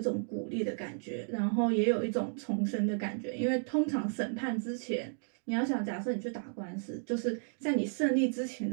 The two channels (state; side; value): silent; left; digital silence